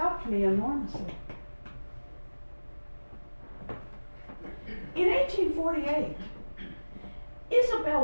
me enormously. In 1848,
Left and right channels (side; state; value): both; inverted; correlation -1.00